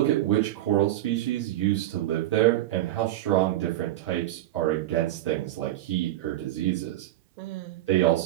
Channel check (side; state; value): left; quieter; 14.6 dB